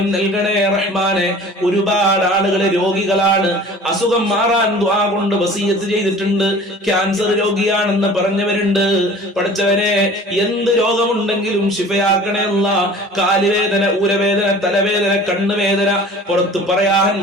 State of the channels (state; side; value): normal; both; correlation 0.44